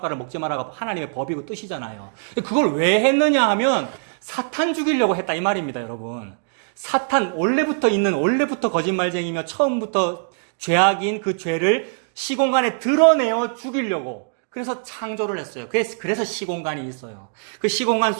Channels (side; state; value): left; silent; digital silence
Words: 먹지 마라가 하나님의 법이고 뜻이잖아요. 그걸 왜 했느냐 하면 사탄 죽이려고 했다 이 말입니다, 여러분. 사탄 원래부터 거짓말쟁이며 처음부터 죄악인 그 죄를 시공간에 드러내어 죽이려고. 그래서 창조를 했어요. 그래서 시공간이 있어요. 그 시공간